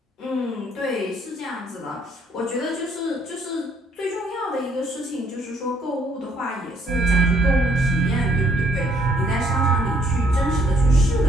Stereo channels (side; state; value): both; normal; correlation 0.68